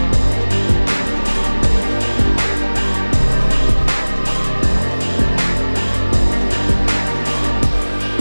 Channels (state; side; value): inverted; both; correlation -1.00